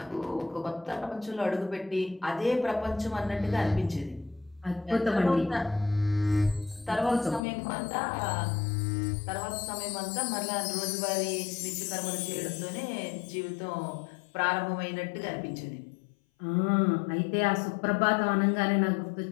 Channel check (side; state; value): right; drops out; at 7.4 s